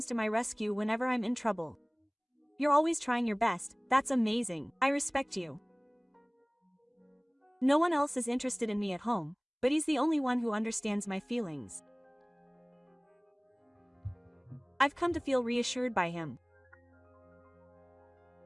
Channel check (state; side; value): identical; both; correlation 1.00